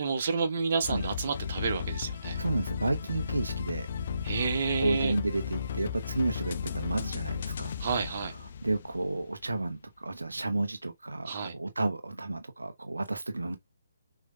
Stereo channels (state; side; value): inverted; both; correlation -0.82